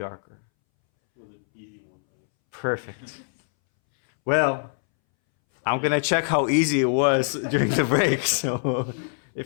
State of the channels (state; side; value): silent; right; 62 dB below the other